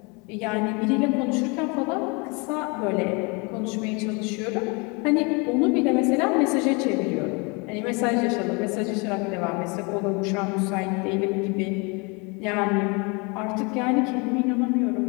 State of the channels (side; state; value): right; quieter; 30.3 dB